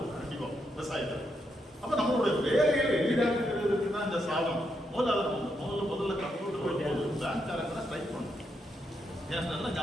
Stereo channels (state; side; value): normal; both; correlation 0.80